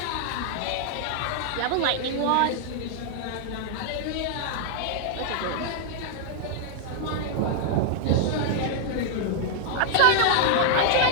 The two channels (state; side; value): different; both; correlation 0.00